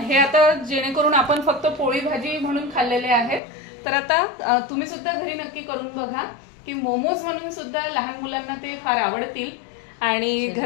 आता जेणेकरून आपण फक्त पोळी भाजी म्हणून खाल्लेले आहेत, तर आता तुम्ही सुद्धा घरी नक्की करून बघा की मोमोज म्हणून सुद्धा लहान मुलांना ते फार आवडतील आणि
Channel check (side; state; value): right; drops out; at 3.4 s